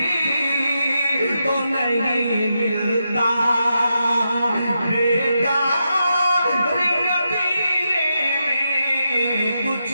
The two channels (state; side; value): inverted; both; correlation -0.85